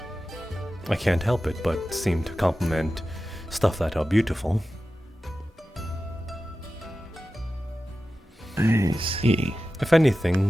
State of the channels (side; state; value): both; normal; correlation 0.94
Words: I can't help it but seem to compliment stuff that are beautiful. I see. If